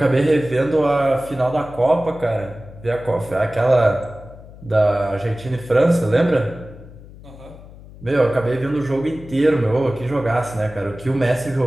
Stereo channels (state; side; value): noise; left; hum, 19 dB below the sound